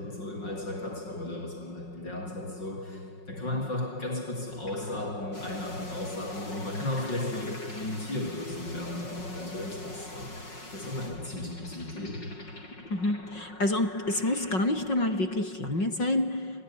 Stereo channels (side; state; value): right; late; 5.5 ms